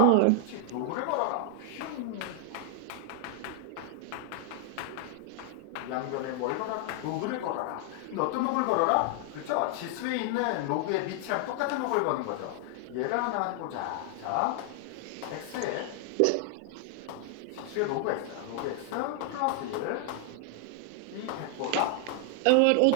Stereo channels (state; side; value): different; both; correlation 0.00